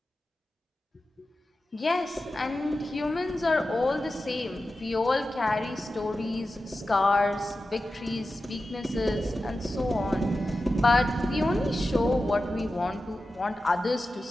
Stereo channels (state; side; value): normal; both; correlation 0.93